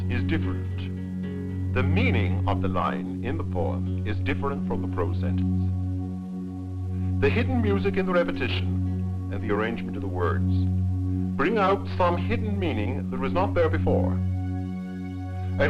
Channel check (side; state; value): both; identical; correlation 1.00